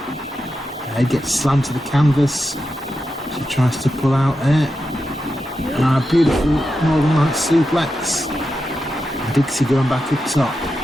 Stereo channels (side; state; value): both; normal; correlation 0.88